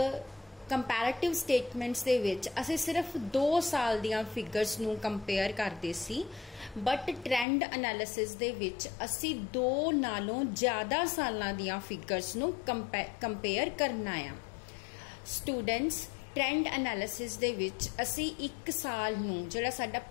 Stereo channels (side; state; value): right; drops out; at 7.5 s